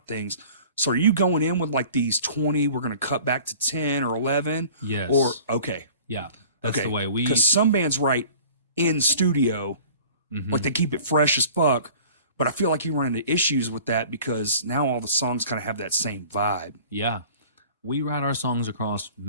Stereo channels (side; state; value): both; inverted; correlation -0.46